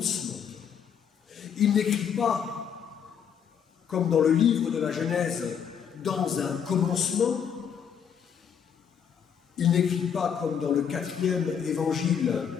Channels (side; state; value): right; quieter; 7.8 dB